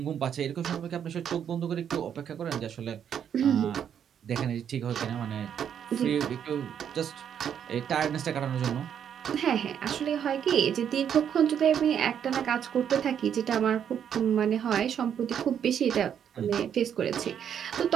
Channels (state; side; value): quieter; left; 8.7 dB